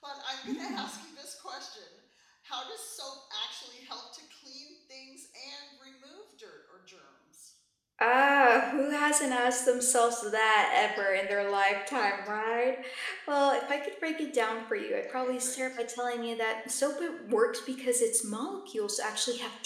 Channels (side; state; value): both; identical; correlation 1.00